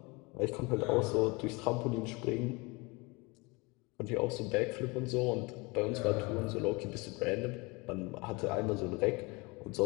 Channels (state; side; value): quieter; right; 26.5 dB